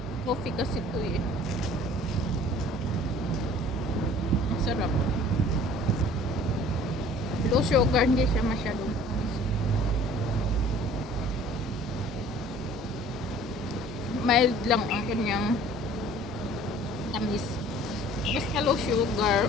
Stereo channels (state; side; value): normal; both; correlation 0.50